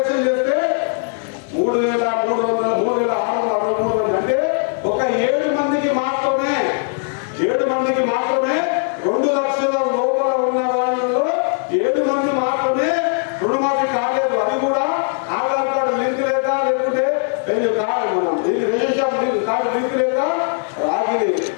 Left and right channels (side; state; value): right; silent; 55 dB below the other